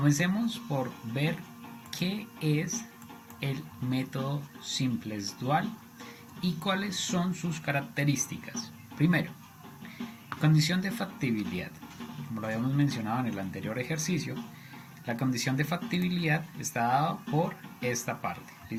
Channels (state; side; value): identical; both; correlation 1.00